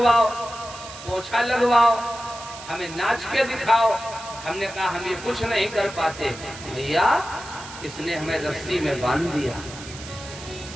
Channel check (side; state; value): right; noise; hiss, 14 dB below the sound